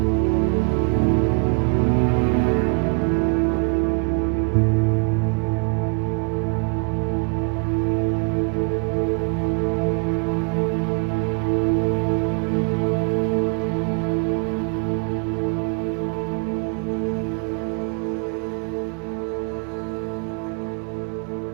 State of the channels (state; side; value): quieter; left; 34.8 dB